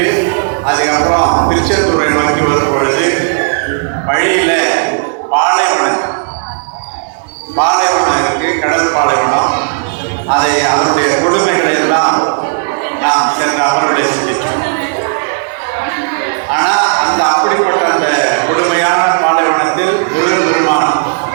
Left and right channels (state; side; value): silent; left; digital silence